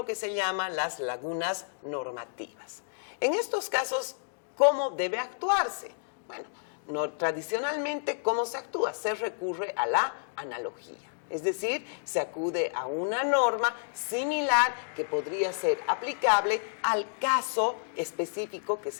que se llama las lagunas normativas. En estos casos, ¿cómo debe actuarse? Bueno, tradicionalmente, ¿cómo se actúa? Se recurre a la analogía. Es decir, se acude a una norma similar que podría ser aplicable al caso específico que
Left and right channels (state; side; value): silent; right; digital silence